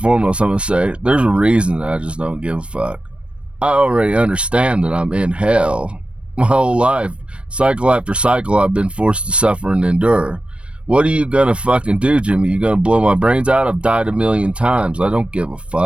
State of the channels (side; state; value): left; late; 0.059 ms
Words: foremost, I'm going to say, there's a reason that I just don't give a fuck. I already understand that I'm in hell. My whole life, cycle after cycle, I've been forced to suffer and endure. What are you going to fucking do, Jimmy? You going to blow my brains out? I've died a million times. I don't give a